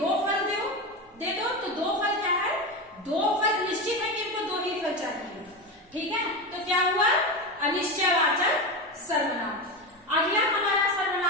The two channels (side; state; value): both; normal; correlation 0.19